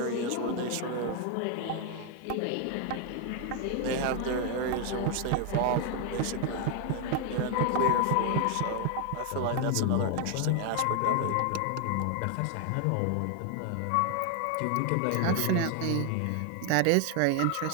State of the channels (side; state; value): both; different; correlation 0.00